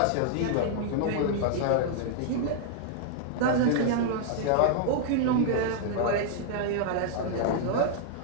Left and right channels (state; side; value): different; both; correlation -0.01